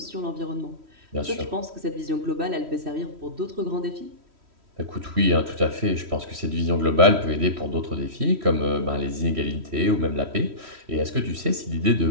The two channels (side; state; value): left; late; 3.1 ms